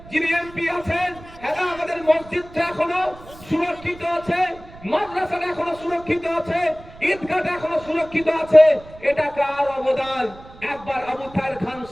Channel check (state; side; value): noise; right; rumble, 19 dB below the sound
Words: যিনি এমপি আছেন, হ্যাঁ আমাদের মসজিদটা এখনো সুরক্ষিত আছে, মাদ্রাসাটা এখনো সুরক্ষিত আছে, ঈদগাহটা এখনো সুরক্ষিত আছে, এটা কার অবদান? একবার আবু তাহের খান